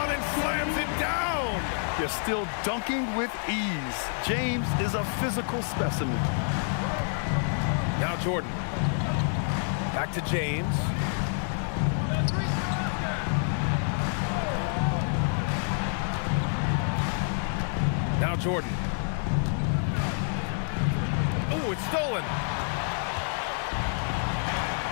and slams it down. They're still dunking with ease. James is a physical specimen. Now Jordan. Back to James. Now Jordan. Oh, it's stolen.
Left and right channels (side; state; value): right; silent; 59 dB below the other